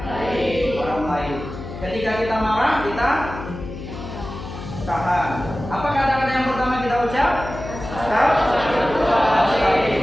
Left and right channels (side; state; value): left; noise; hum, 10 dB below the sound